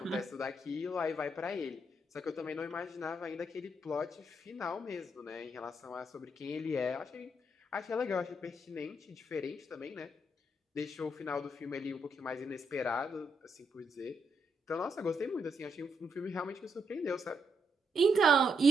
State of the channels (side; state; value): both; normal; correlation 0.78